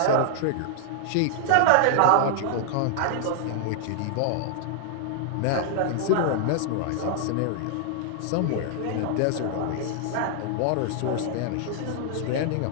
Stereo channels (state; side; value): different; both; correlation -0.01